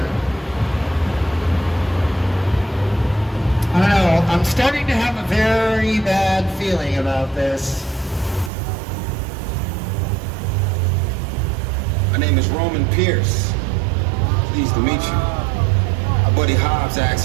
I don't know, I'm starting to have a very bad feeling about this. My name is Roman Pierce. Pleased to meet you. Our buddy Hobbs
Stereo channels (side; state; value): left; drops out; at 8.5 s